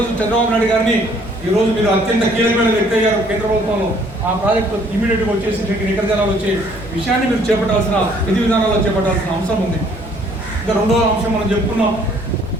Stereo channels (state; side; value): normal; both; correlation 0.61